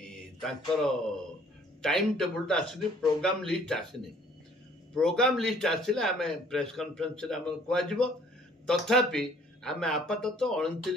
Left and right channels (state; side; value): normal; both; correlation 0.58